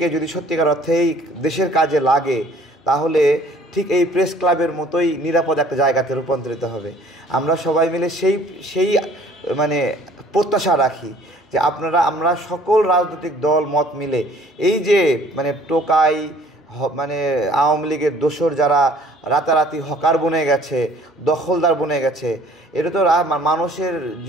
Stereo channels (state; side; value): normal; both; correlation 0.55